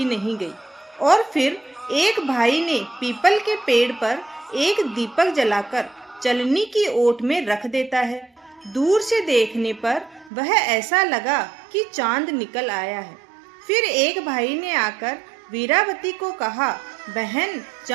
नहीं गई और फिर एक भाई ने पीपल के पेड़ पर एक दीपक जलाकर चलनी की ओट में रख देता है। दूर से देखने पर वह ऐसा लगा कि चांद निकल आया है। फिर एक भाई ने आकर वीरावती को कहा, बहन,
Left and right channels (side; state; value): left; drops out; at 10.3 s